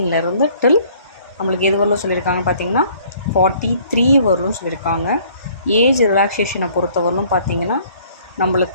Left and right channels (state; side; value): inverted; both; correlation -0.58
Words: டில் நம்மளுக்கு எது வரலும் சொல்லியிருக்காங்க பார்த்திங்கன்னா 43 வரலும் சொல்லியிருக்காங்க. ஏஜ் ரிலாக்ஸேஷனை பொறுத்தவரையிலும் பார்த்திங்கன்னா